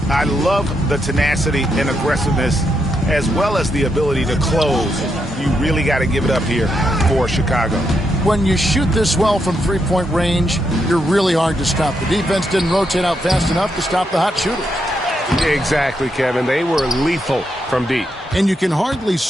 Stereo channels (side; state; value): both; normal; correlation 0.81